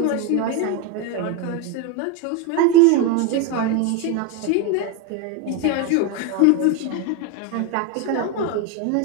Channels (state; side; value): different; both; correlation 0.03